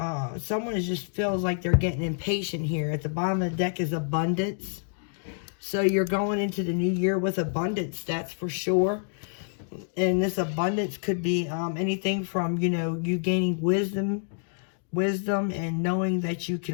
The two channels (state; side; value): silent; right; digital silence